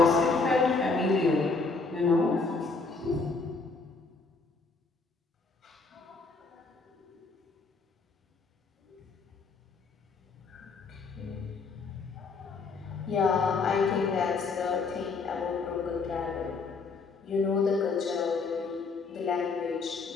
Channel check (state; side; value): quieter; right; 4.3 dB